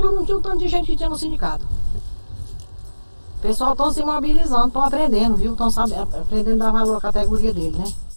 não tinha um tanto de gente que tinha no sindicato. O pessoal estão se mobilizando, estão aprendendo, viu? Estão aprendendo a dar valor à categoria dele, né?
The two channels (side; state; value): both; inverted; correlation -1.00